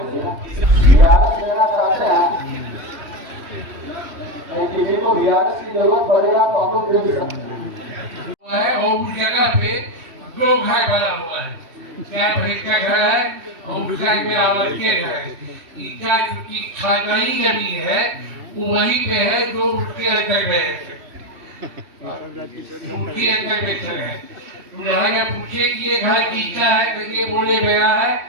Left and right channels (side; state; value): left; late; 3.1 ms